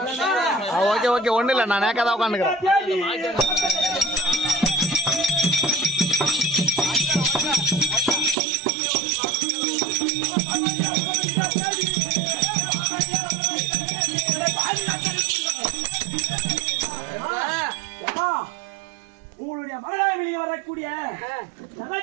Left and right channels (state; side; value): drops out; left; at 8.3 s